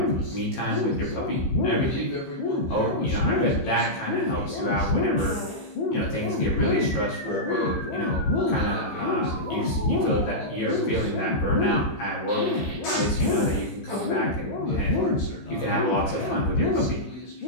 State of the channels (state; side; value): late; right; 15 ms